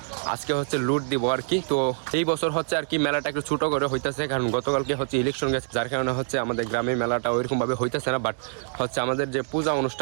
আজকে হচ্ছে লুট দিব আর কি। তো এই বছর হচ্ছে আর কি মেলাটা একটু ছোট করে হইতেছে, কারণ গতকালকে হচ্ছে ইলেকশন গেছে, যার কারণে হচ্ছে আমাদের গ্রামে মেলাটা ওইরকম ভাবে হইতেছে না। বাট হচ্ছে আমাদের যে পূজা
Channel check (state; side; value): silent; left; 61 dB below the other